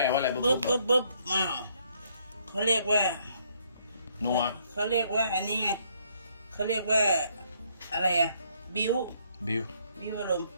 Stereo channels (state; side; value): inverted; both; correlation -0.68